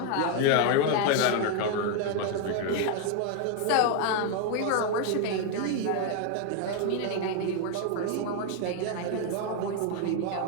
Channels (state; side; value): different; both; correlation 0.00